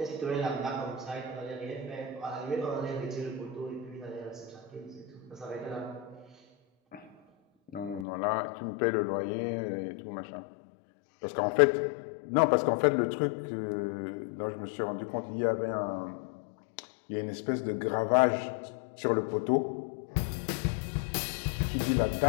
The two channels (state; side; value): drops out; right; at 8.1 s